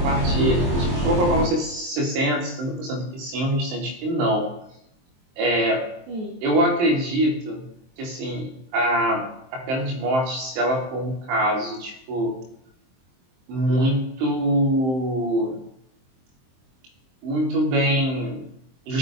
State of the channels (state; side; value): late; left; 23 ms